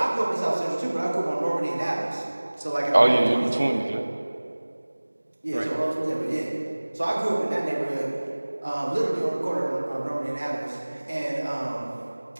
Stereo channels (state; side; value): inverted; both; correlation -1.00